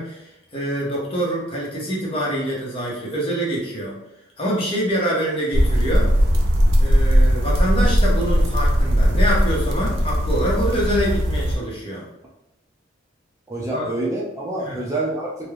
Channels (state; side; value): normal; both; correlation 0.78